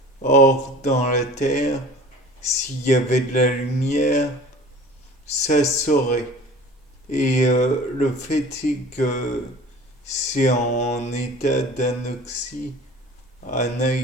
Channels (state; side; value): normal; both; correlation 0.43